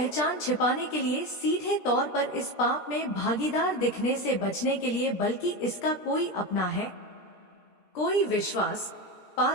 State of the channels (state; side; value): late; right; 17 ms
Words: छिपाने के लिए, सीधे तौर पर इस पाप में भागीदार दिखने से बचने के लिए, बल्कि इसका कोई अपना है, कोई विश्वास